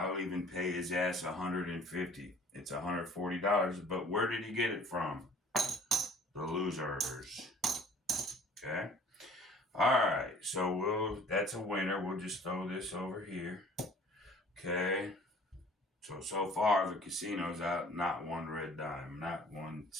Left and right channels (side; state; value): both; normal; correlation 0.51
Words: even pay his ass $150. It's $140. But where did he get it from? The losers. Okay. All right. So that's a winner. We'll just throw this over here. Okay. So far the casino's out not one red dime, not 1